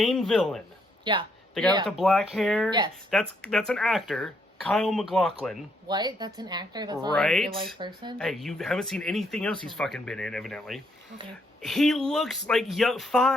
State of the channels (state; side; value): normal; both; correlation 0.73